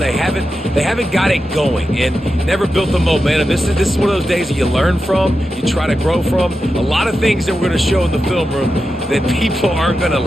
haven't got it going and never built the momentum. This is one of those days that you learn from, you try to grow from. A lot of things that we're going to show in the film room that people aren't going to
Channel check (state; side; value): normal; both; correlation 0.90